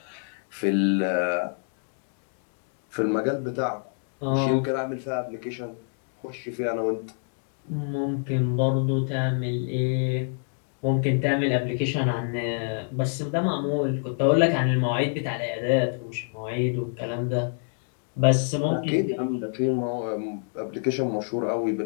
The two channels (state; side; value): silent; right; digital silence